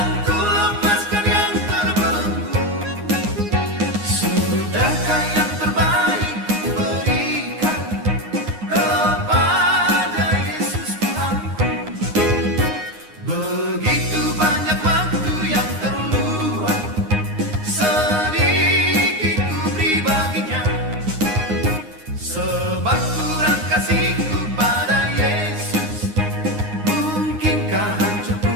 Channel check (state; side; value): late; left; 9.7 ms